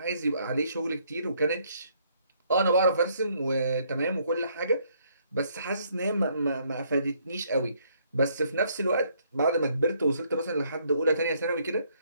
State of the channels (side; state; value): both; inverted; correlation -0.68